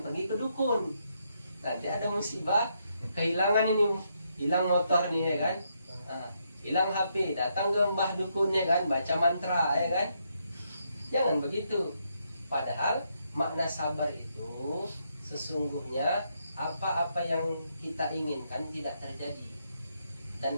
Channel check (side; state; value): both; inverted; correlation -0.78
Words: pergi ke dukun. Nanti ada musibah, kehilangan ini, hilang motor nih, ya kan? Hilang HP, datang ke mbah dukunnya kan, baca mantra, ya kan? Jangan begitu. Padahal makna sabar itu sesungguhnya apa-apa yang kita inginkan tidak terjadi. Dan